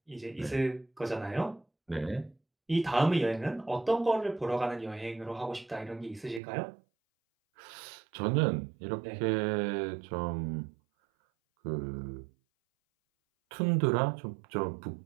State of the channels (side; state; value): left; drops out; at 6.4 s